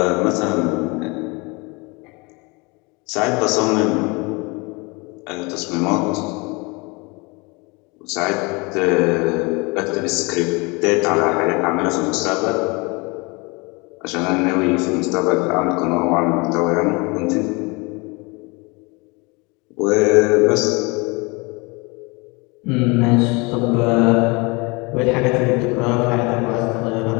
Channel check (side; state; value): right; quieter; 27.7 dB